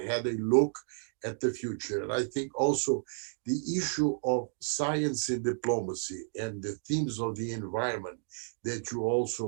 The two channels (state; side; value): silent; left; digital silence